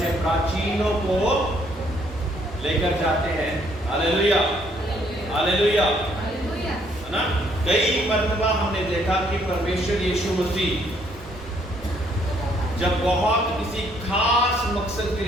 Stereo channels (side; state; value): both; normal; correlation 0.67